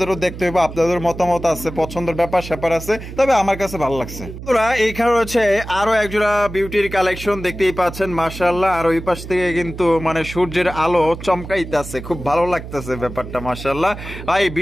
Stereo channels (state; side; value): noise; right; hum, 11 dB below the sound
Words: দেখতে হইব। আপনাদের মতামত আছে, পছন্দের ব্যাপার স্যাপার আছে, তবে আমার কাছে ভালো লাগছে। বন্ধুরা এইখানে রয়েছে আরো এক জোড়া বিউটির কালেকশন। দেখতেই পাচ্ছেন মাশাআল্লাহ। আর ওই পাশ থেকে কিন্তু মানে সূর্যের আলো চমকাইতেছে, খুব ভালো লাগতেছে ব্যাপারটা মাশাআল্লাহ। ভাই